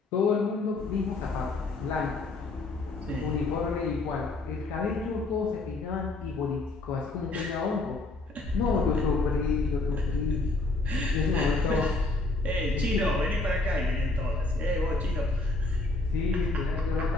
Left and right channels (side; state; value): right; quieter; 3.1 dB